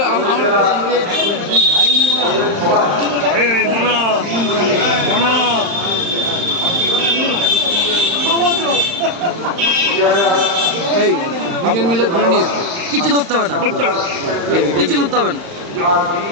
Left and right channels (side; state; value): left; late; 35 ms